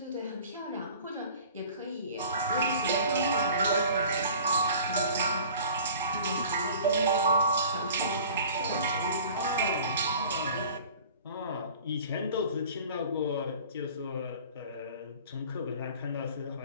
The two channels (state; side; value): inverted; both; correlation -0.45